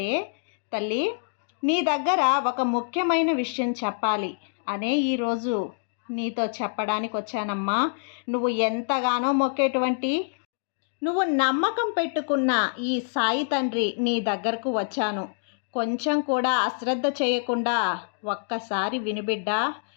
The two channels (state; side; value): silent; right; digital silence